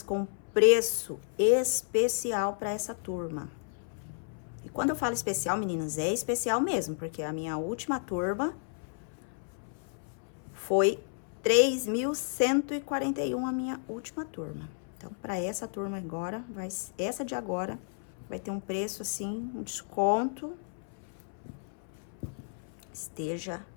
com preço especial para essa turma. E quando eu falo especial, meninas, é especial mesmo, porque a minha última turma foi 3.141 a minha última turma. Então, para essa turma agora, essa de agora, vai ter um preço assim, um desconto. Esteja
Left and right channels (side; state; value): right; silent; 56 dB below the other